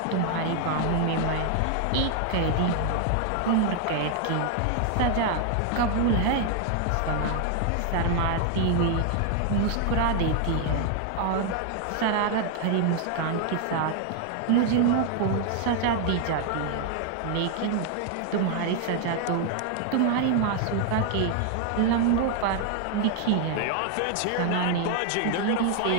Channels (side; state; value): both; different; correlation 0.00